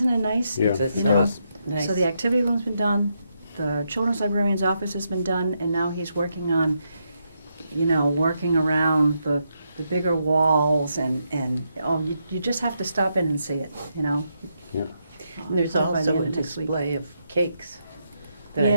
it nice? Yeah. It's You know, nice. So the activity room's been done, the children's librarian's office has been done, and now he's working on, you know, working around the bigger walls and you just have to stop in and see it, you know. Yeah. And there's By the also end a of next week. display of cakes that I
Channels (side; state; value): both; inverted; correlation -0.81